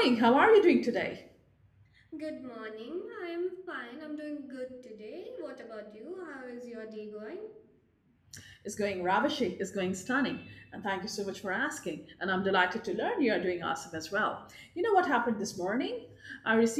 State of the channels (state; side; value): identical; both; correlation 1.00